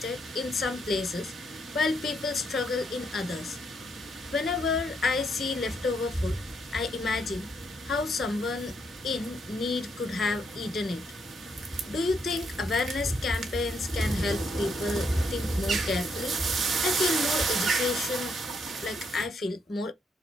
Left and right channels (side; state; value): both; normal; correlation 0.75